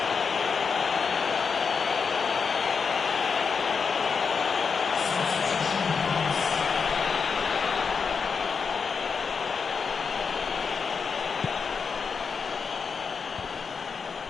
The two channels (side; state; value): right; quieter; 5.6 dB